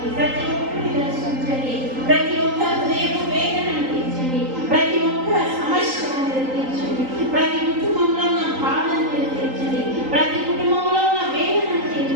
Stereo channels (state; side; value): late; left; 3.8 ms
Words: ప్రతి ఒక్కరిని దర్శించండి, ప్రతి ఒక్క హృదయ వేదనను తీర్చండి, ప్రతి ఒక్క సమస్యను మీరు తీర్చండి, ప్రతి కుటుంబంలో ఉన్న బాధను మీరు తీర్చండి, ప్రతి కుటుంబంలో ఉన్న వేదనను